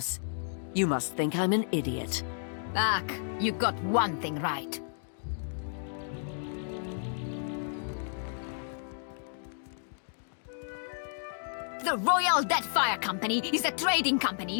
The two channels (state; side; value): silent; right; digital silence